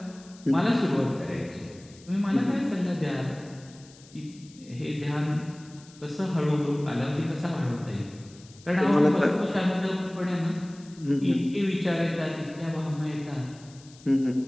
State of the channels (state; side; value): noise; left; hiss, 24 dB below the sound